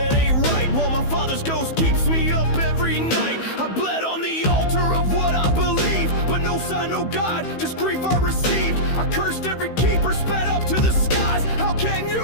ain't right, while my father's ghost keeps me up every night. I bled on the altar of what I believe, but no sign, no God, just grief I received. I cursed every keeper, spat up to the skies. How can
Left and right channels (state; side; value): late; right; 15 ms